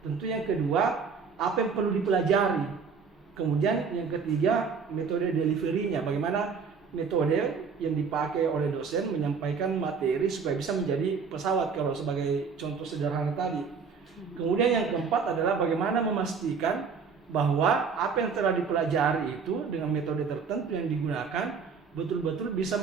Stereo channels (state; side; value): quieter; left; 5.6 dB